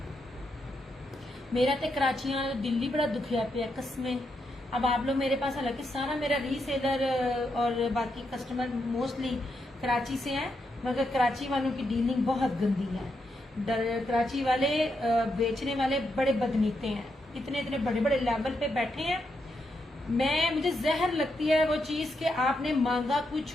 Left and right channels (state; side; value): normal; both; correlation 0.82